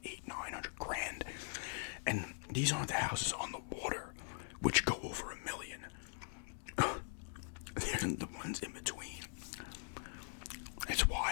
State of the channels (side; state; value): right; silent; digital silence